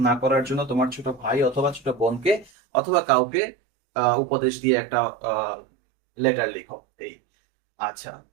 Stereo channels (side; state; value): left; drops out; at 2.5 s